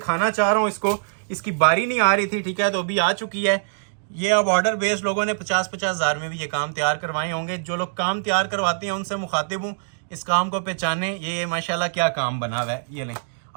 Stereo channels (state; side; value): silent; left; digital silence